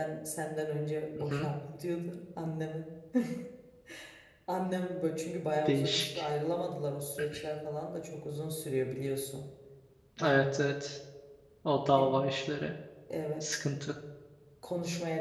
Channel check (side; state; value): both; identical; correlation 1.00